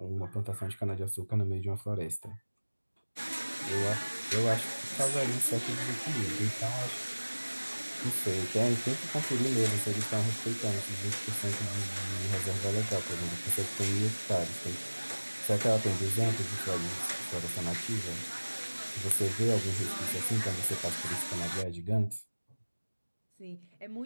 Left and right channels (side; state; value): both; inverted; correlation -1.00